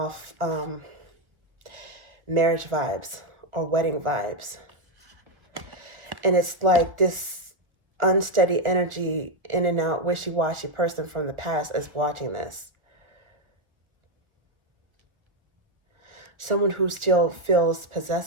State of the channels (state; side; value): late; left; 1.3 ms